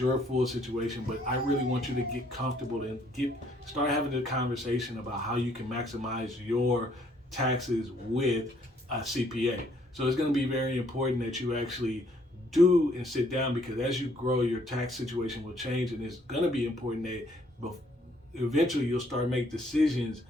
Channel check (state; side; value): normal; both; correlation 0.66